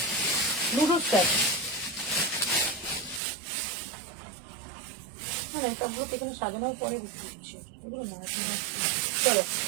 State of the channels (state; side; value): drops out; left; at 3.2 s